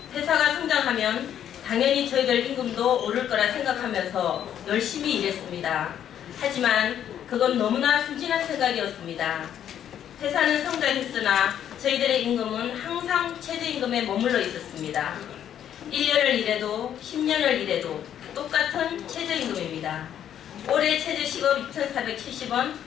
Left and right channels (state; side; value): quieter; right; 10.0 dB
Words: 회사가 성장하면 당연히 저희들 임금도 오를 거라 생각하면서 열심히 일했습니다. 하지만 그건 너무나 순진한 생각이었습니다. 회사는 성장했으나 저희들의 임금은 항상 최저임금에 머물러 있었습니다. 1년을 일해도 10년을 일해도 똑같은 최저임금입니다. 올해 최저시급 2,470원,